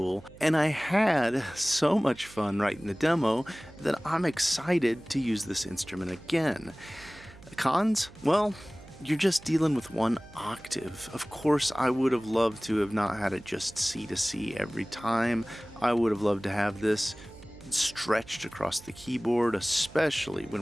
and I had so much fun writing the demo that I'm excited to use this instrument again. Cons? Well, you're just dealing with one octave. Of course, I would have loved to have not had it just C to C every time. I would have loved to have this stretched across the keyboard, especially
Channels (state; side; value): noise; right; hum, 21 dB below the sound